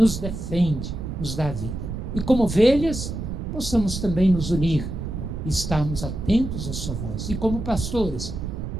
defende, nos dá vida. E como ovelhas, possamos também nos unir e estarmos atentos à sua voz. E como pastores,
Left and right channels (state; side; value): noise; right; rumble, 6 dB below the sound